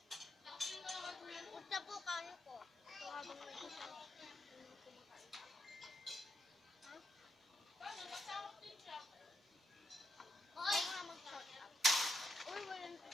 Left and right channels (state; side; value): normal; both; correlation 0.80